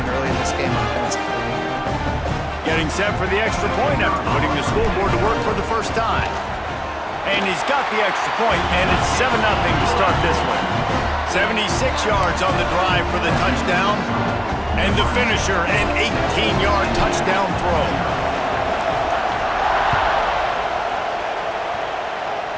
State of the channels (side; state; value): both; identical; correlation 1.00